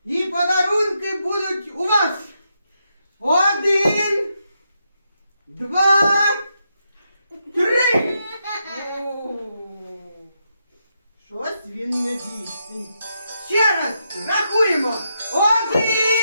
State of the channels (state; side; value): inverted; both; correlation -0.82